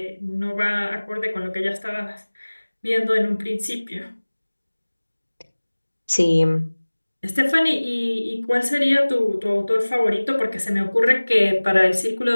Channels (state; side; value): inverted; both; correlation -1.00